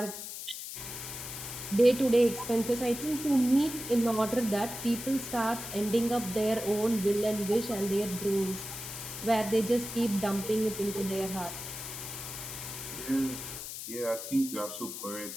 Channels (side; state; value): left; noise; hiss, 8 dB below the sound